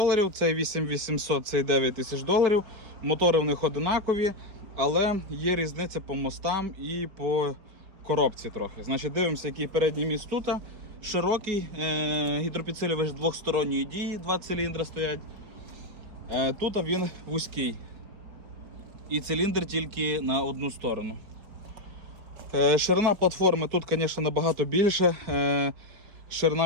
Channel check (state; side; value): late; left; 4.8 ms